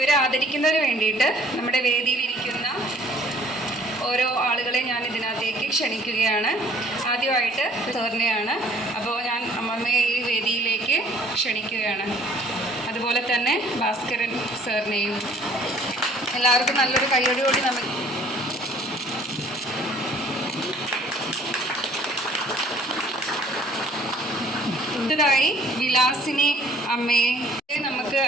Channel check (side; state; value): both; normal; correlation 0.56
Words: ആദരിക്കുന്നതിന് വേണ്ടിയിട്ട് നമ്മുടെ വേദിയിലിരിക്കുന്ന ഓരോ ആളുകളെ ഞാൻ ഇതിനകത്തേക്ക് ക്ഷണിക്കുകയാണ്. ആദ്യമായിട്ട് സാറിനെയാണ്. അപ്പോൾ ഞാൻ അമ്മമ്മയെ ഈ വേദിയിലേക്ക് ക്ഷണിക്കുകയാണ്. അതുപോലെ തന്നെ ഭാസ്കരൻ സാറിനെയും. എല്ലാവർക്കും നല്ലൊരു കയ്യടിയോടി നമുക്ക് ായി വിലാസിനി അമ്മയെ നമുക്ക്